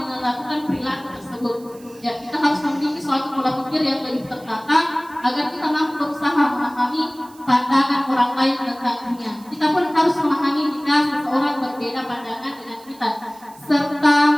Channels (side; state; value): right; noise; hiss, 25 dB below the sound